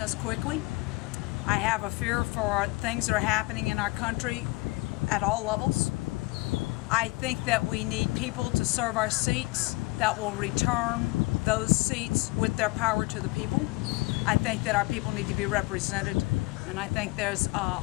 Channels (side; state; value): right; quieter; 23.7 dB